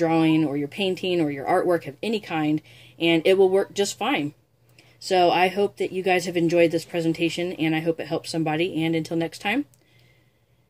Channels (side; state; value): both; identical; correlation 1.00